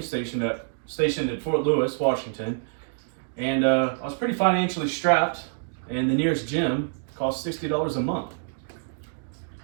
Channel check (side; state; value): left; silent; digital silence